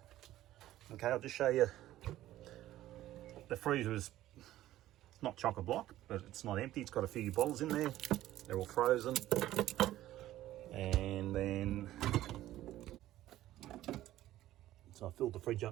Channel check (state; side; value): quieter; left; 14.3 dB